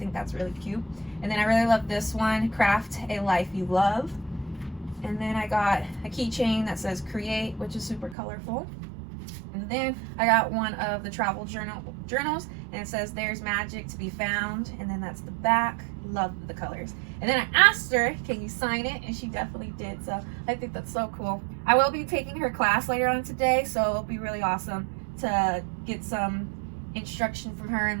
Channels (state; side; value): drops out; left; at 8.2 s